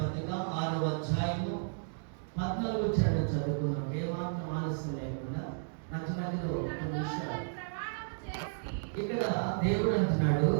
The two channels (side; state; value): left; silent; digital silence